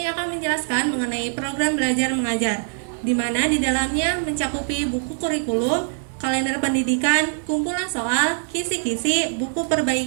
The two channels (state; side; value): silent; left; digital silence